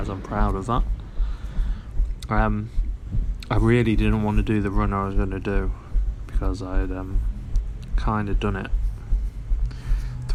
I'm proud of that. I really didn't want to do the run I was going to do because I had kind of done it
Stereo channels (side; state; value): both; identical; correlation 1.00